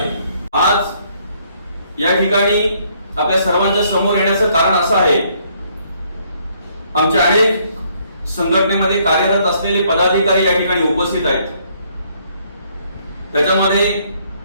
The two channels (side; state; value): both; inverted; correlation -0.67